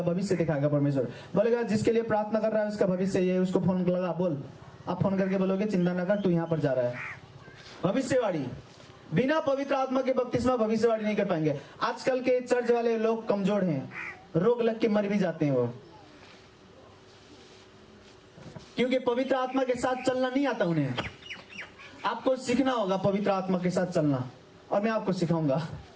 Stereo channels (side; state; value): both; identical; correlation 1.00